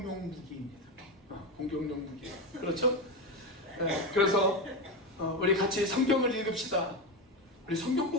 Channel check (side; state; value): both; normal; correlation 0.15